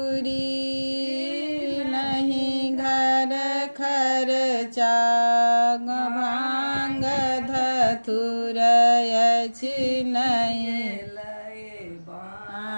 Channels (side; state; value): both; inverted; correlation -1.00